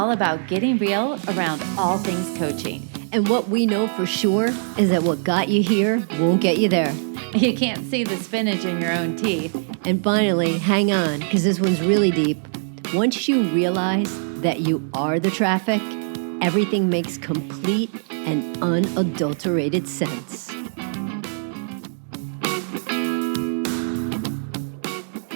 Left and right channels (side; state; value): left; silent; digital silence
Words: about getting real around all things coaching. And what we know for sure is that what got you here won't get you there. You can't see the spinach in your own teeth. And finally, hang on, because this one's really deep. Once you realize that you are the traffic, everything makes complete and unadulterated sense.